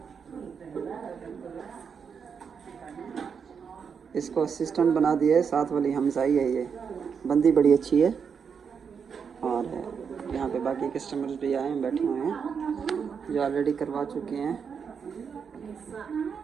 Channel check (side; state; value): left; quieter; 6.5 dB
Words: इसको असिस्टेंट बना दिया है, साथ वाली हमसाई है, ये बंदी बड़ी अच्छी है। और यहाँ पे बाकी कस्टमर्स भी आए हैं, बैठे हुए हैं जो ऑलरेडी करवा चुके हैं।